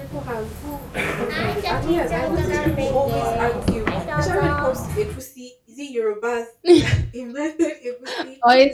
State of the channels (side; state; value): both; identical; correlation 1.00